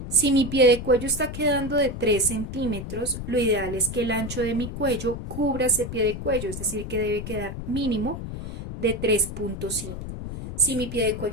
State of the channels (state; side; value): noise; left; rumble, 8 dB below the sound